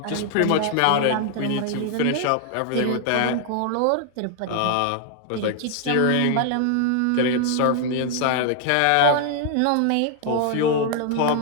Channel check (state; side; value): different; both; correlation 0.00